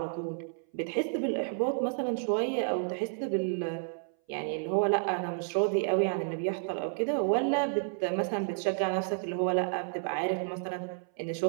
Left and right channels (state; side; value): silent; left; 57 dB below the other